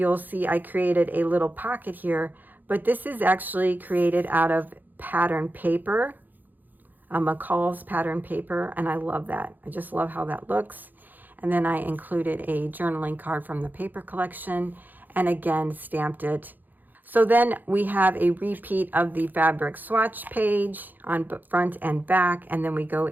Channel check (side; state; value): left; late; 0.086 ms